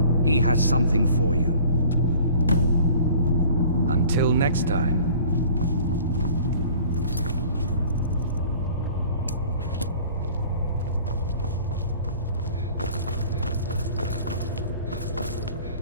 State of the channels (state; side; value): inverted; both; correlation -0.48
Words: He has something for you. Until next time.